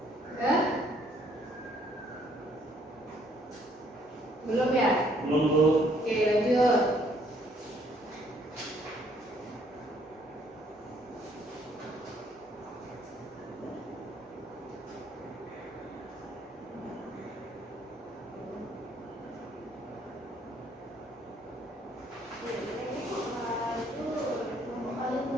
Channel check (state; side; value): normal; both; correlation 0.65